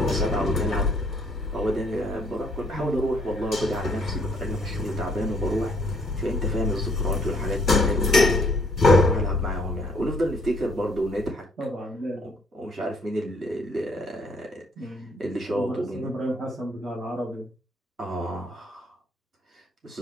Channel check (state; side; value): normal; both; correlation 0.65